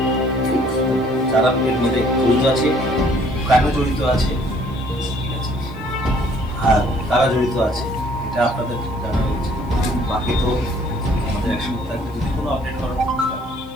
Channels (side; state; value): right; noise; hiss, 29 dB below the sound